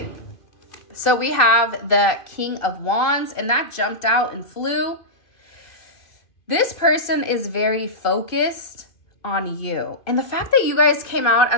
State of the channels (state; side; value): late; right; 2.5 ms